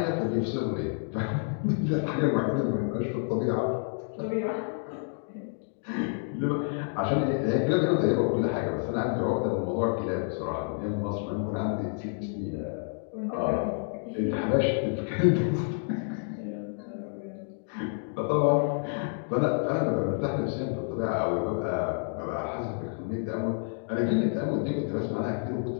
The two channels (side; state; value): right; silent; 59 dB below the other